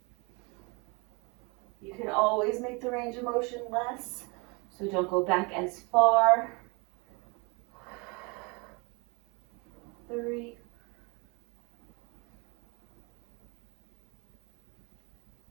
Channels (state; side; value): quieter; left; 29.5 dB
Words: You can always make the range of motion less, so don't go back as far. 3.